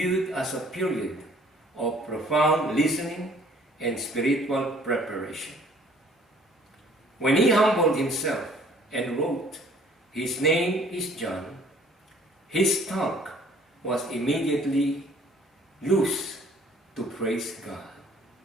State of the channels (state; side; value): normal; both; correlation 0.56